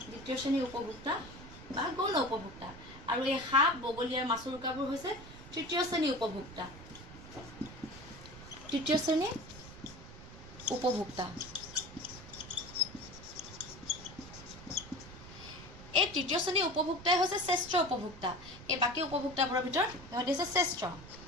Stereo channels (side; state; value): right; noise; rumble, 16 dB below the sound